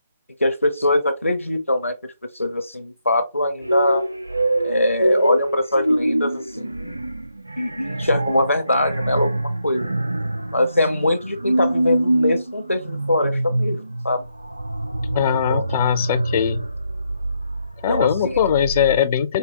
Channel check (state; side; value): inverted; both; correlation -0.77